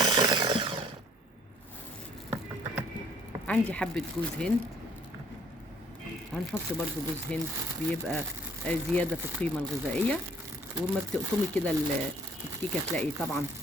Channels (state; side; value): normal; both; correlation 0.59